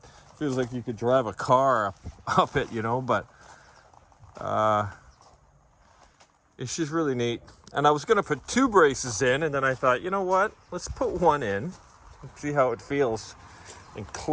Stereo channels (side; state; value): both; identical; correlation 1.00